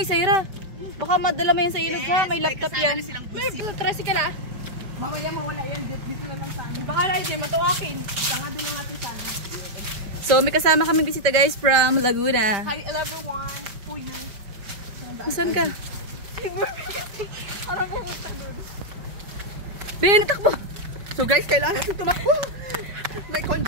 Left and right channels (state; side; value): late; left; 5.2 ms